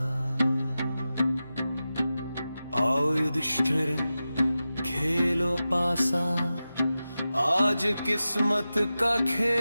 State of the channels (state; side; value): inverted; both; correlation -0.93